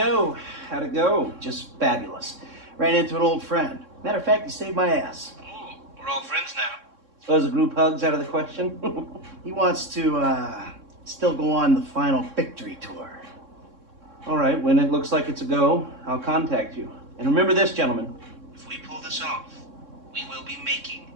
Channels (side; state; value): left; late; 3.6 ms